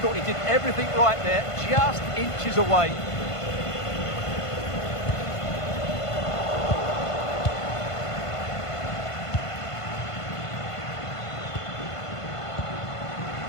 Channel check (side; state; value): right; late; 1.5 ms